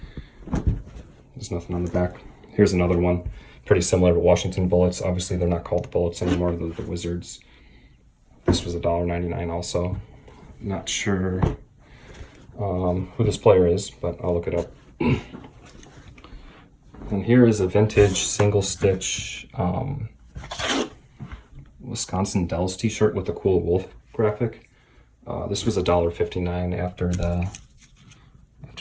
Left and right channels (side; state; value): both; identical; correlation 1.00